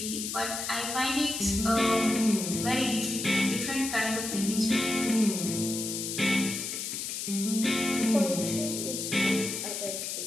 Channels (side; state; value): left; noise; hiss, 4 dB below the sound